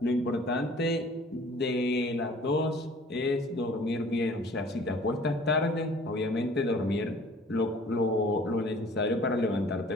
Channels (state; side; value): normal; both; correlation 0.51